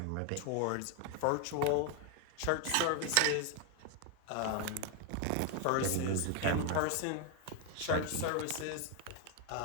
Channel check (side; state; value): both; different; correlation 0.01